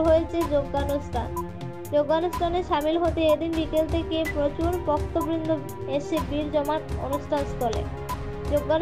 হয়েছে যজ্ঞানুষ্ঠান। যজ্ঞানুষ্ঠানে সামিল হতে এদিন বিকেল থেকে প্রচুর ভক্তবৃন্দ এসে ভিড় জমান অনুষ্ঠান স্থলে।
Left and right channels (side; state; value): both; identical; correlation 1.00